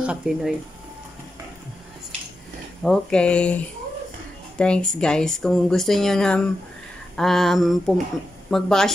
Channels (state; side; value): normal; both; correlation 0.89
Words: Kapinoy. Okay. Thanks guys. Kung gusto niyo na